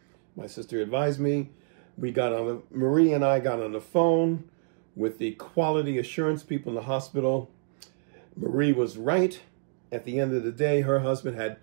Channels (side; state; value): left; silent; digital silence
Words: My sister advised me. Marie and I got on the phone with the quality assurance people in the hospital. Marie was right. At the end of the day, her husband had